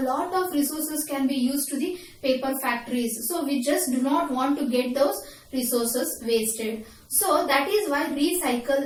lot of resources can be used to the paper factories. So, we just do not want to get those resources wasted. So, that is why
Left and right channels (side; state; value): both; identical; correlation 1.00